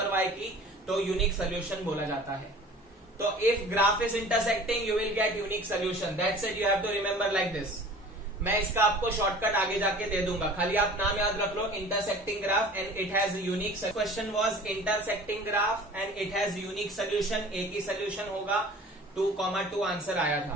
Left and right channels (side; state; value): both; normal; correlation 0.44